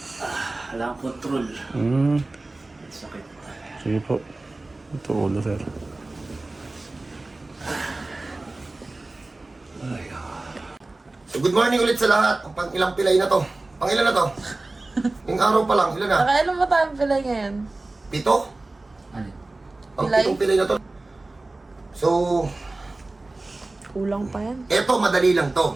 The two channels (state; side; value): quieter; left; 3.0 dB